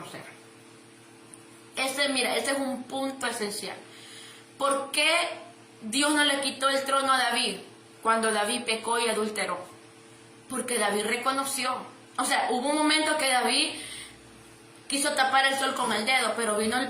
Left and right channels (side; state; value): both; identical; correlation 1.00